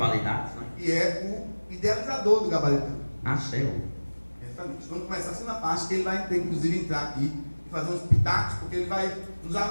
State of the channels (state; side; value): inverted; both; correlation -1.00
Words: né? E é o idealizador do Gabaritando. Ah, céu. Exatamente. Vamos começar a segunda parte, que ele vai inclusive entrar aqui e fazer uns pitacos, porque ele vai nos